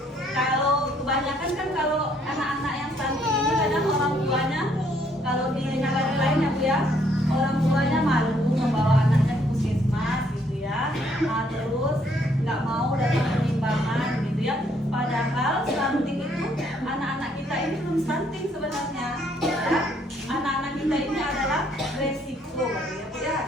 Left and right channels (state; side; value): normal; both; correlation 0.67